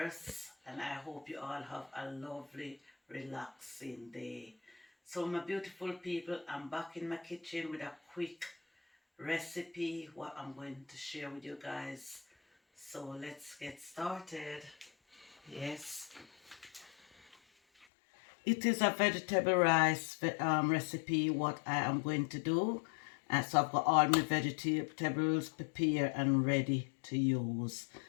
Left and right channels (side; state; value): right; drops out; at 17.9 s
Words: And I hope you all have a lovely, relaxing day. So, my beautiful people, I'm back in my kitchen with a quick recipe what I'm going to share with you guys. So, let's get started. Yes. It is a vegetable rice recipe what I am going to do. So I've got all my vegetables prepared and ready to use.